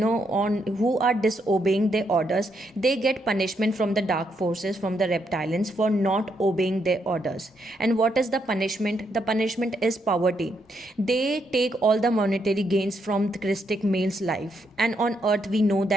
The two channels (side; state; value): both; normal; correlation 0.77